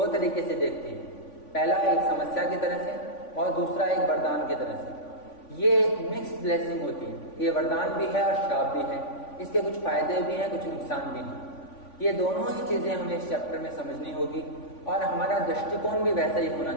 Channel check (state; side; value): late; right; 3.5 ms